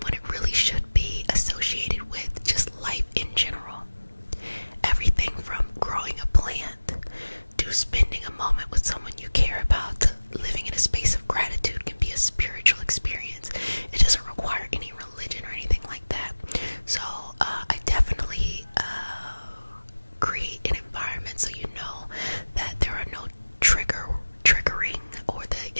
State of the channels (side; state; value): both; inverted; correlation -1.00